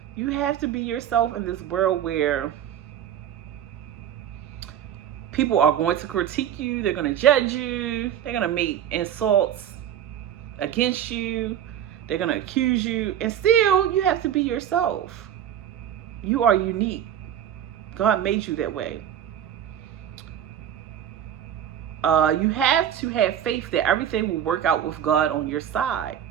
You have to be yourself in this world where people are going to critique you. They're going to judge you. They're going to make insults against you. They're going to accuse you. And still, you have to be yourself. You are unique. God made you that way. You have to have faith that everything will work out with God on your side.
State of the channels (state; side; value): quieter; left; 10.1 dB